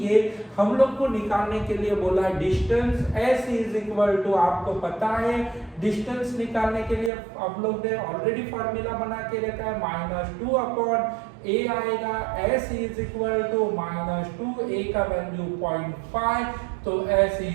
ये हम लोग को निकालने के लिए बोला है distance. s is equal to, आपको पता है डिस्टेंस निकालने के लिए हम लोग ने ऑलरेडी फॉर्मूला बना के रखा है, -2/a आएगा। s is equal to -2, a का वैल्यू 0.5, तो s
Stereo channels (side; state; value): left; drops out; at 7.1 s